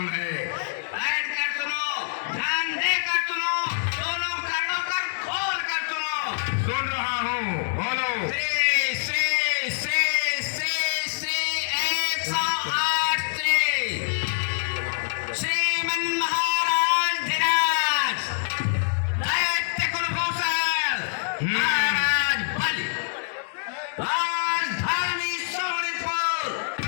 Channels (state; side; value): silent; right; digital silence